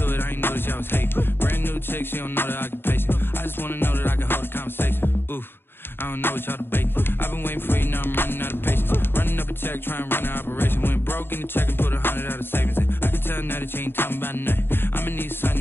it, I ain't noticed y'all was hating. Brand new chick, she don't know that I can pace it. I just want to know that I can hold a conversation. Oof, I don't know what y'all debating. I've been waiting for you, now I'm running out of patience. Running up a check, trying to run an operation. Went broke in the check and put 100 out of savings in. I can tell now that you ain't talking about nothing. I'ma need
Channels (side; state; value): right; late; 0.10 ms